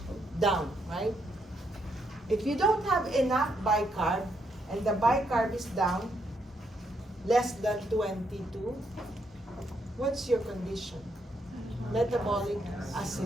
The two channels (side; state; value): both; normal; correlation 0.76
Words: down, right? If you don't have enough bicarb, and the bicarb is down, less than 22, what's your condition? Metabolic